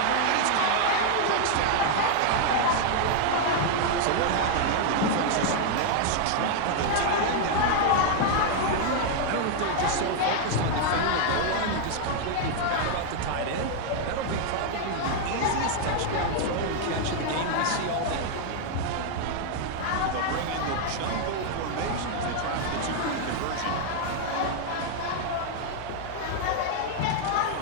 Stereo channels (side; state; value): both; different; correlation 0.00